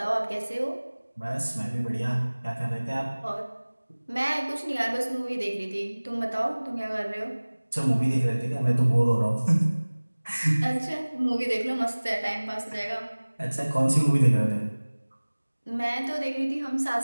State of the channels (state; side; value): inverted; both; correlation -1.00